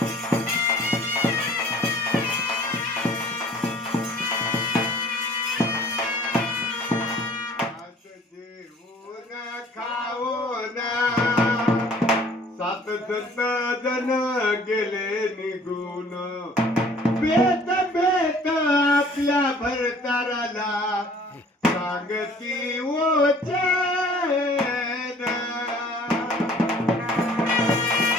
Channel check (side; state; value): both; normal; correlation 0.53